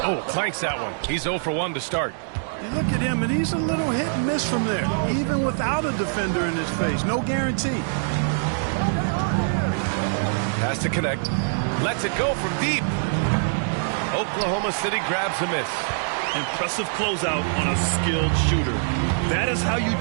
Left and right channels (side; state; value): left; silent; digital silence